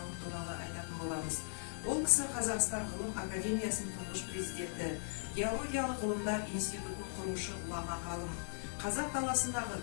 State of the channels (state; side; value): silent; right; digital silence